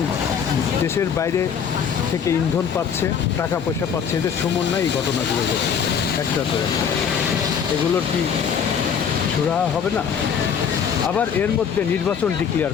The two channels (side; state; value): right; quieter; 7.2 dB